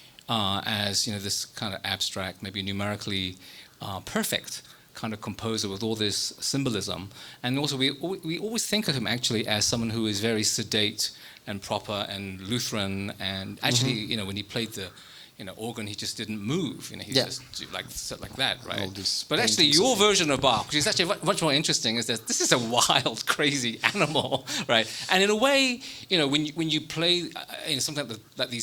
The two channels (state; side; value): identical; both; correlation 1.00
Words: as, you know, this kind of abstract, maybe numerically perfect kind of composer with all this symbolism. And also we always think of him actually as someone who is very sedate and proper and Lutheran, and actually, you know, when he played the organ, he just didn't move. You know, he just sat like that, right? But actually, your version of Bach, which is actually much more interesting, is that this is a wild, crazy animal, right? And in a way, you know, when you play something like these